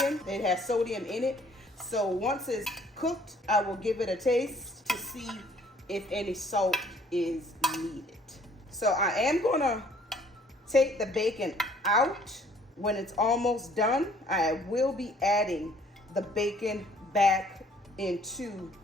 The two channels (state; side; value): normal; both; correlation 0.59